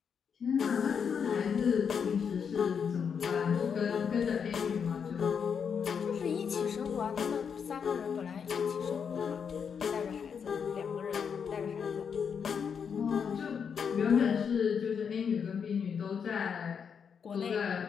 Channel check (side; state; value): right; quieter; 6.8 dB